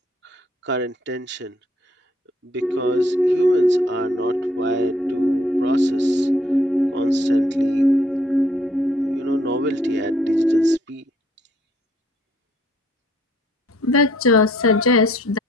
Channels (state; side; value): normal; both; correlation 0.65